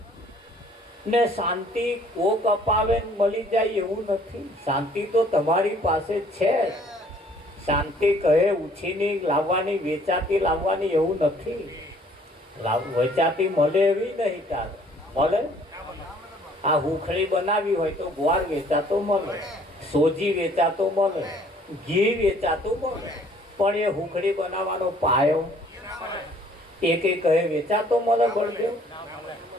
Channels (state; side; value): normal; both; correlation 0.58